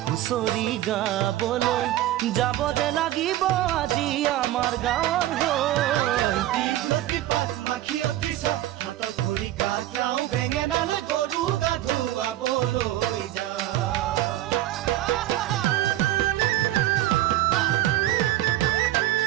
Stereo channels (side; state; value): left; quieter; 14.3 dB